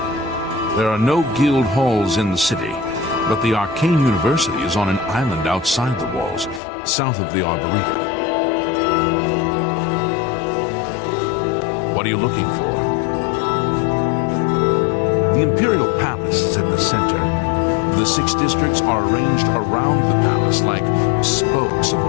There are no guild halls in the city, but the Arcane University is on an island outside the walls, south of the Arboretum. What are you looking for? The Imperial Palace is at the center. The 6 districts are arranged around the palace like spokes of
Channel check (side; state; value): right; drops out; at 6.6 s